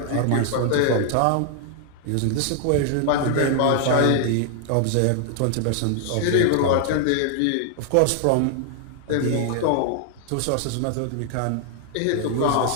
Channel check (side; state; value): both; different; correlation 0.00